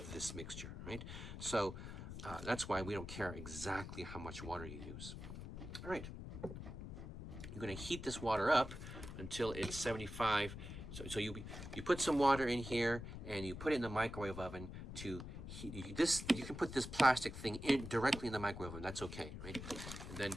this mixture, right? So that's why we don't care exactly how much water you use. All right. You're going to heat this water up until it's 75. So you put some water in here and you put it in the microwave oven to heat this. You can put this plastic thing in directly in the microwave oven. That's okay, right? And then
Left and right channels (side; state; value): left; noise; rumble, 9 dB below the sound